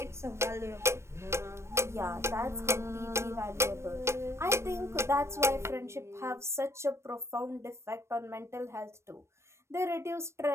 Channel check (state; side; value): late; left; 0.13 ms